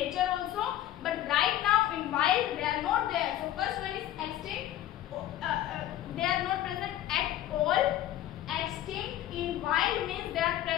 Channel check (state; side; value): quieter; right; 12.9 dB